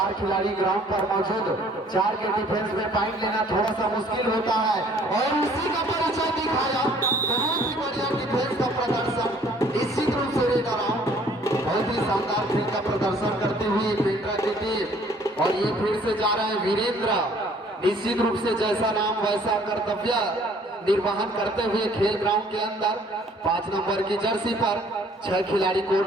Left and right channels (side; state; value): both; normal; correlation 0.58